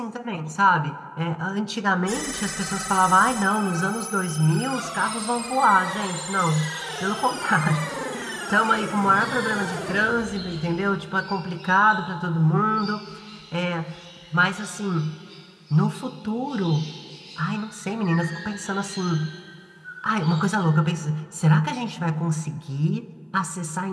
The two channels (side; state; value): both; identical; correlation 1.00